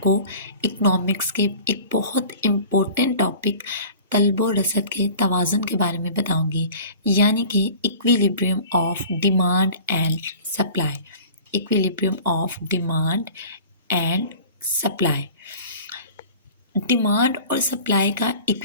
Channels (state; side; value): inverted; both; correlation -0.43